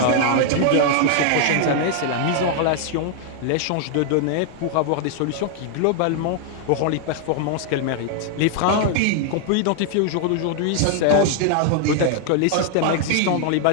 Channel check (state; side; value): different; both; correlation 0.00